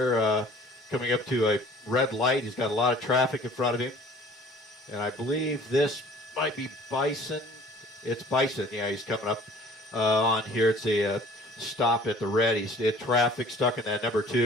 coming up to a red light. He's got a lot of traffic in front of him, and I believe this might be Bison. It's Bison. Yeah, he's coming up on here. It's a stop at the red. He's in traffic, stuck in that number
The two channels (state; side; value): normal; both; correlation 0.50